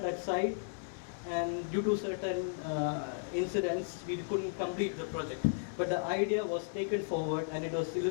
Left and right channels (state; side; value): silent; right; digital silence